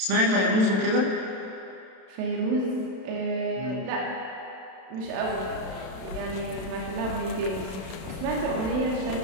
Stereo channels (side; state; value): left; late; 32 ms